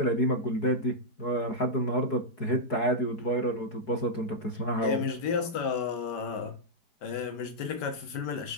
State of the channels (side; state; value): right; late; 5.1 ms